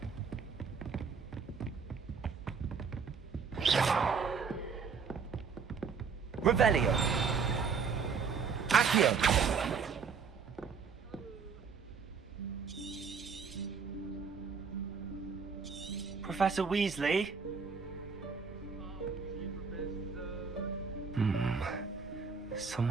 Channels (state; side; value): quieter; left; 5.7 dB